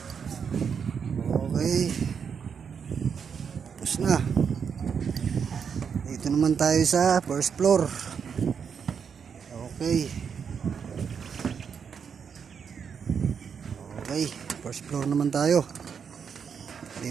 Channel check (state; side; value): quieter; left; 6.8 dB